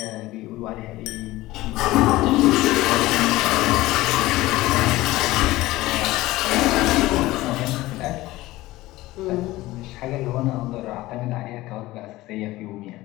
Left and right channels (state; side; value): quieter; right; 18.0 dB